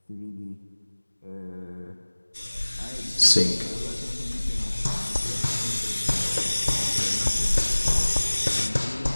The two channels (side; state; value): both; inverted; correlation -1.00